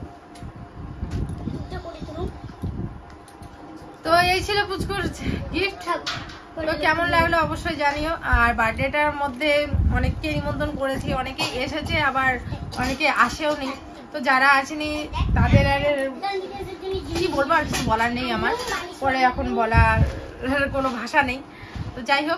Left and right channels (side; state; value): both; identical; correlation 1.00